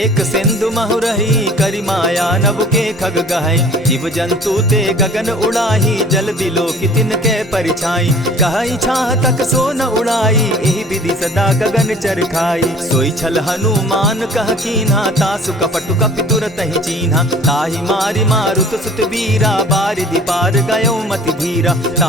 सिंधु महु रही, करि माया नभ के खग गहई। जीव जंतु ते गगन उड़ाही, जल बिलो की तिनके परिछाई। कहई छाह तक सो न उड़ाई, एहि विधि सदा गगन चर खाई। सोई छल हनुमान कह कीन्हा, तासु कपटु कपि तुरत ही चीन्हा। ताहि मारि मारुत सुत वीरा, बारिधि पार गयो मति धीरा।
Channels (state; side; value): normal; both; correlation 0.49